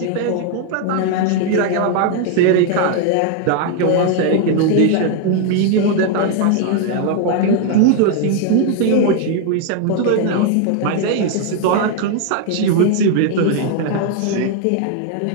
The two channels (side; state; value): both; different; correlation 0.00